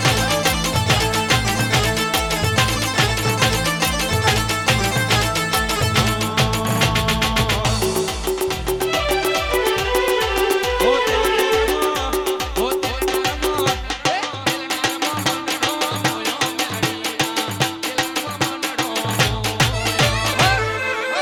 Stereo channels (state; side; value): identical; both; correlation 1.00